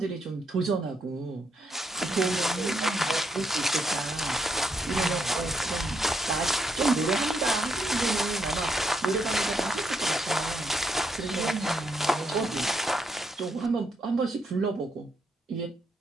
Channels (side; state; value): both; normal; correlation 0.77